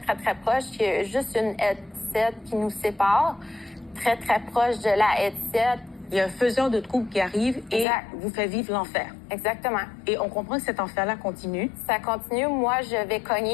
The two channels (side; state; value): right; drops out; at 7.9 s